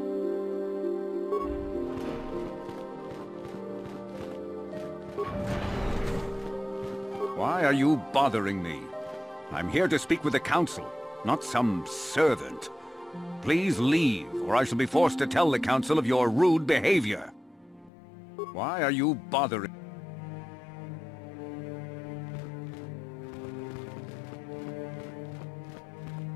Why are you bothering me? I'm here to speak with the Council, not some servant. Please leave, or I shall be forced to tell the Council of your rude behavior. Why are you bothering?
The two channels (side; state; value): right; drops out; at 17.9 s